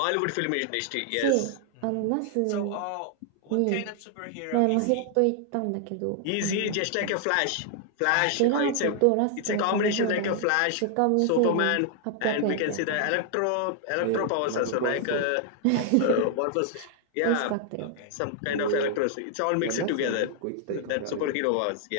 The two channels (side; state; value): both; different; correlation 0.00